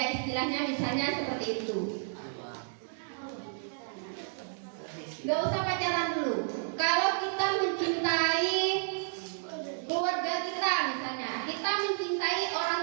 istilahnya misalnya seperti itu. Gak usah pacaran dulu. Kalau kita mencintai keluarga kita misalnya, kita mencintai orang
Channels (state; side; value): silent; left; digital silence